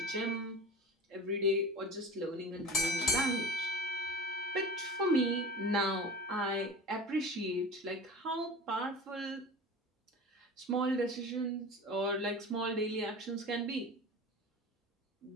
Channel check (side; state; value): both; normal; correlation 0.34